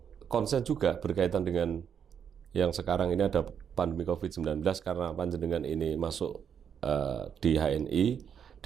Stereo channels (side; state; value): left; quieter; 7.8 dB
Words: konsen juga berkaitan dengan yang sekarang ini ada pandemi COVID-19 karena panjenengan ini masuk di HNI